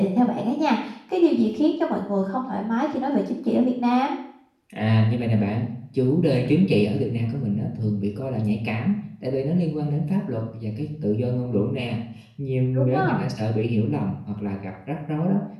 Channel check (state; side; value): identical; both; correlation 1.00